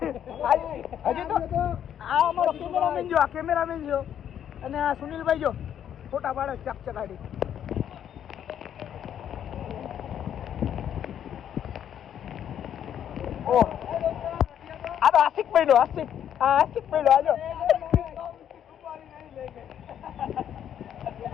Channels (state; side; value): quieter; right; 9.6 dB